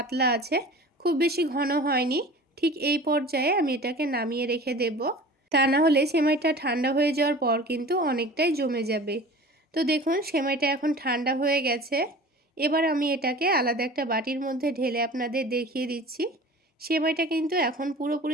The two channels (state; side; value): normal; both; correlation 0.40